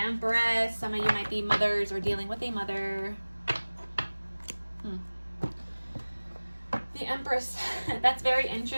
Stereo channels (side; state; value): both; inverted; correlation -1.00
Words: Some of you might be mothers or dealing with a mother. The Empress. That's very